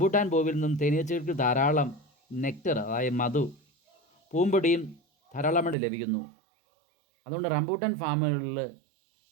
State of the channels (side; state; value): left; drops out; at 5.8 s